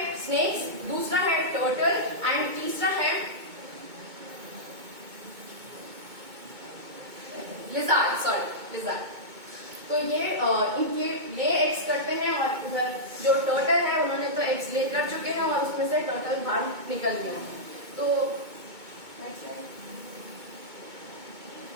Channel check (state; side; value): late; left; 2.2 ms